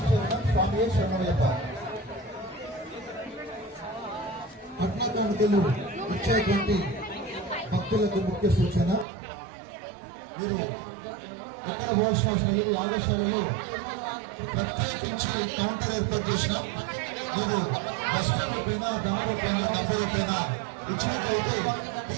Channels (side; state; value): left; drops out; at 9.1 s